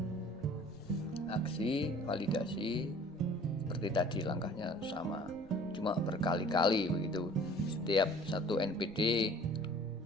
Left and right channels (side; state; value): right; noise; rumble, 25 dB below the sound